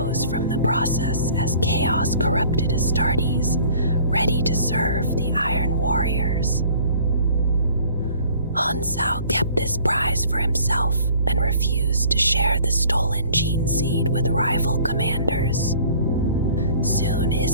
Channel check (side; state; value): both; inverted; correlation -0.52